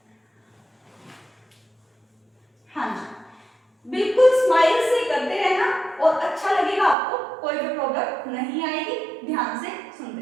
हाँ जी, बिल्कुल स्माइल से करते रहना और अच्छा लगेगा आपको, कोई भी प्रॉब्लम नहीं आएगी। ध्यान से सुनते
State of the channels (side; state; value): left; drops out; at 7.0 s